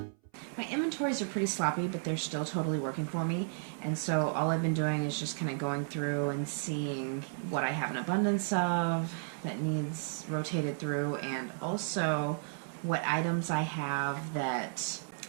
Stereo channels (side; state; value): left; silent; 55 dB below the other